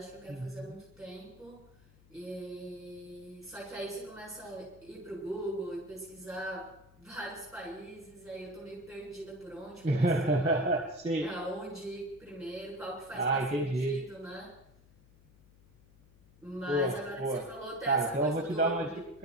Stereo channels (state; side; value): noise; left; hum, 25 dB below the sound